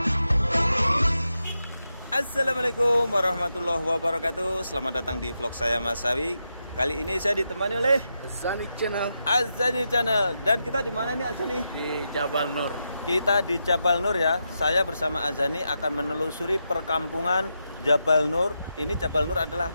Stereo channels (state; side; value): inverted; both; correlation -0.86